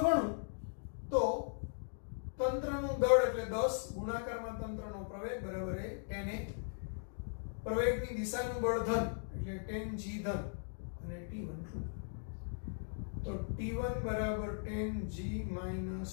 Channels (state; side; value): silent; right; digital silence